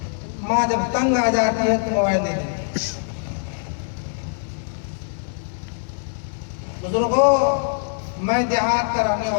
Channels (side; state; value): right; silent; digital silence